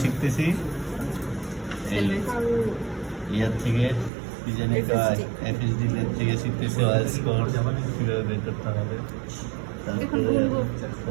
শিখতেছি এই ইয়ার থেকে, এফএসডি থেকে শিখতেছি ওয়ার স্কোর কীভাবে বের করতে হবে, তারপরে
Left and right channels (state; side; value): drops out; left; at 4.1 s